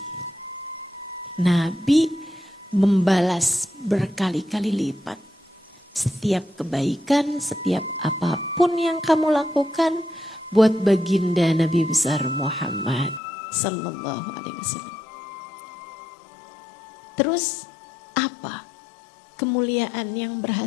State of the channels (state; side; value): drops out; right; at 13.2 s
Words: Nabi membalas berkali-kali lipat. Setiap kebaikan, setiap apapun yang kamu lakukan buat baginda Nabi besar Muhammad sallallahu alaihi wasallam. Terus apa kemuliaan yang